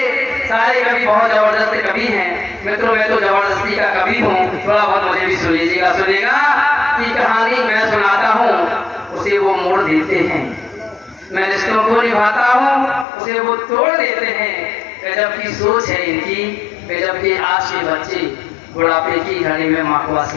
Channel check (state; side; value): drops out; right; at 13.1 s